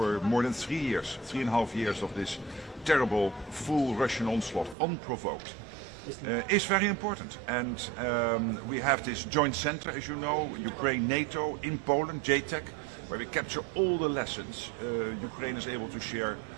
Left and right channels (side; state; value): left; drops out; at 4.8 s